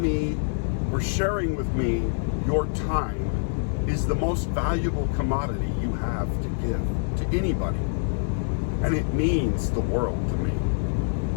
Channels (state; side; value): silent; right; digital silence